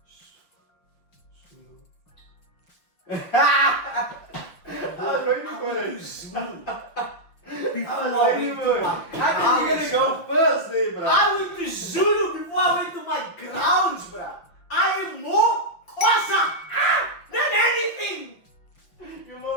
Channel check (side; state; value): right; late; 5.8 ms